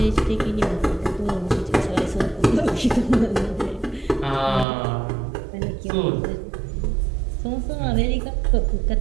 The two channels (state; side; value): drops out; left; at 4.7 s